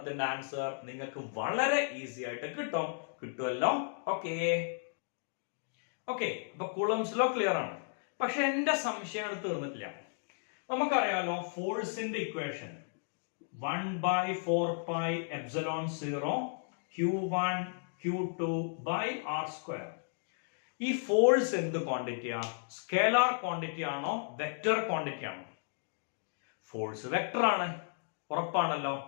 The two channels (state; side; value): silent; right; digital silence